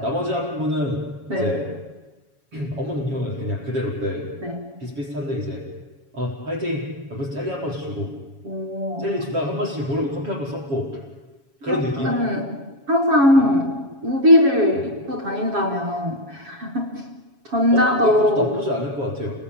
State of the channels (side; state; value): left; late; 7.2 ms